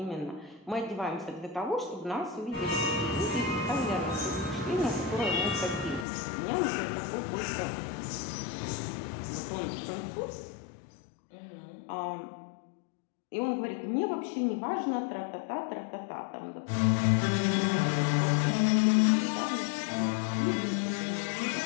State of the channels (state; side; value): drops out; right; at 6.1 s